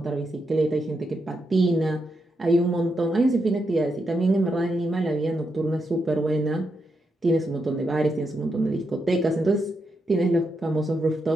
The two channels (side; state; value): both; normal; correlation 0.83